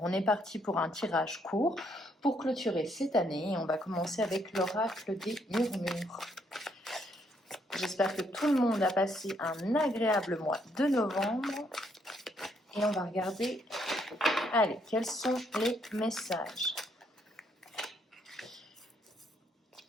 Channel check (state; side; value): normal; both; correlation 0.72